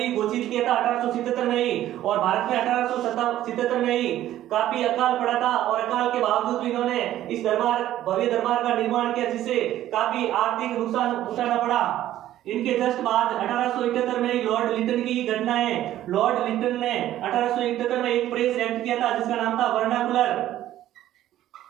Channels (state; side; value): quieter; left; 13.1 dB